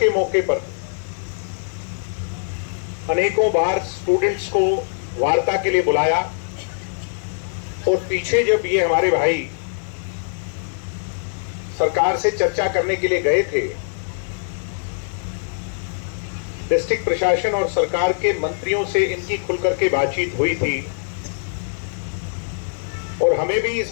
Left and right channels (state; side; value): silent; right; digital silence